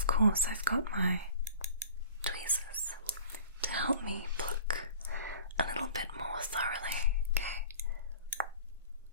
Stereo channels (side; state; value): both; inverted; correlation -0.45